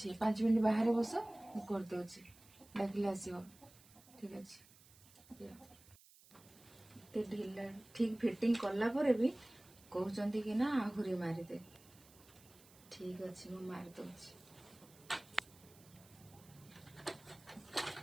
5 मिनट बाहर बस करदे डाकिले आसो ठीक अच्छे ढिला ठीक फिटिंग कला पर भी कहते कि ना आहुरी मारिदे ठीक अच्छे मु मारिदे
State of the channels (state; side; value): noise; right; hiss, 24 dB below the sound